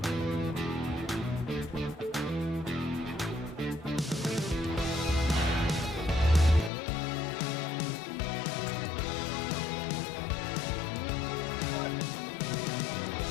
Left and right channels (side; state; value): right; drops out; at 6.7 s